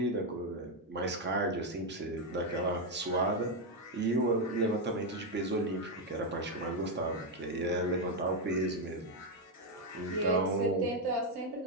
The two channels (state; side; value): normal; both; correlation 0.03